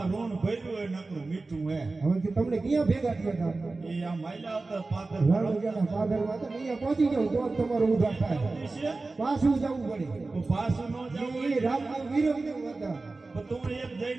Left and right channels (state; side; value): quieter; left; 3.5 dB